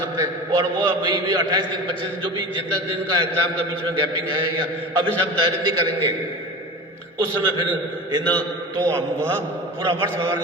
हैं। और वो अभी भी 28 दिन, 25 दिन, जो भी जितना दिन का एग्जाम का बीच में गैपिंग है या अभी से हम तैयारी नहीं करेंगे, उस समय फिर इन तो वह पूरा वर्ष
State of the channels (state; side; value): normal; both; correlation 0.32